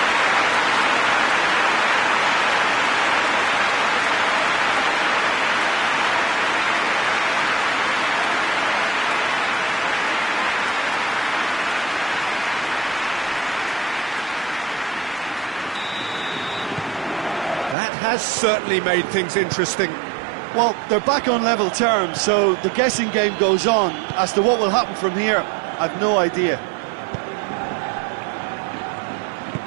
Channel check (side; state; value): left; drops out; at 17.8 s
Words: That has certainly made things interesting. Well, they're back on level terms, so the guessing game goes on. As to what will happen from here, I've no idea.